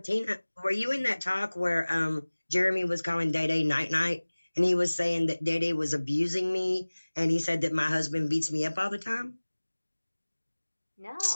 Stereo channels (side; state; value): both; inverted; correlation -1.00